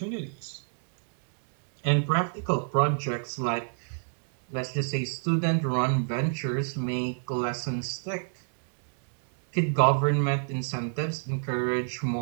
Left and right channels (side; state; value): left; silent; digital silence